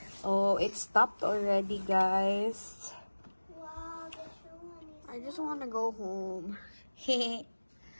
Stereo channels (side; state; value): both; inverted; correlation -1.00